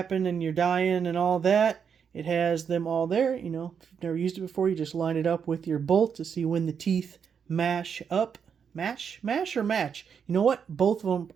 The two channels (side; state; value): left; quieter; 7.0 dB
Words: and your dyeing and all that, it has them all there. You know, if you've never used it before, you just line it up with your bolt to see when the teeth mash up. Mash or match? You know what? Both of them